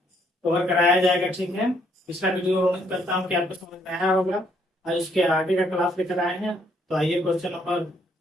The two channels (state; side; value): normal; both; correlation 0.69